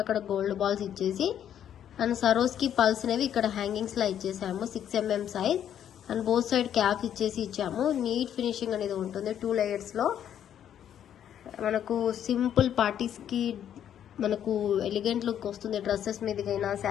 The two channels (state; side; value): quieter; right; 9.9 dB